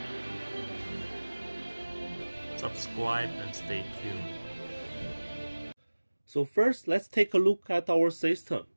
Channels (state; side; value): inverted; both; correlation -1.00